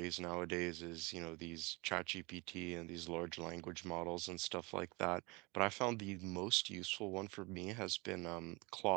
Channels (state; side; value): quieter; left; 26.6 dB